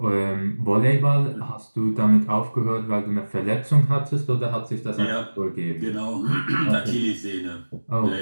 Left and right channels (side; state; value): both; inverted; correlation -1.00